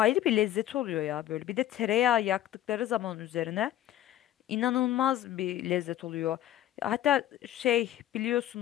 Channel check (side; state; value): right; quieter; 12.8 dB